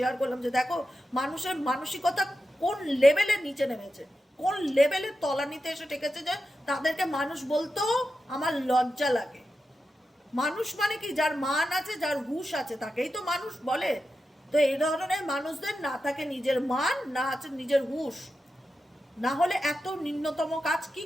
করলাম যে দেখো মানুষের মানসিকতা কোন লেভেলের নিচে নেমেছে, কোন লেভেলের তলানিতে এসে ঠেকেছে, যে তাদেরকে মানুষ বলতেও আমার লজ্জা লাগে। মানুষ মানে কি, যার মান আছে, যার হুঁশ আছে, তাকেই তো মানুষ বলে। তো এই ধরনের মানুষদের না থাকে নিজের মান, না আছে নিজের হুঁশ, না হলে এত নিম্নতম কাজ কি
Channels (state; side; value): normal; both; correlation 0.90